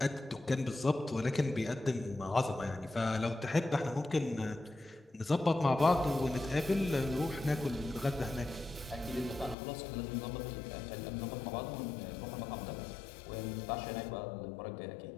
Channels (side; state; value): right; drops out; at 9.6 s